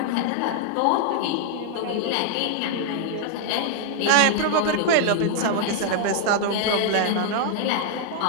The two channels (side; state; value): both; different; correlation -0.01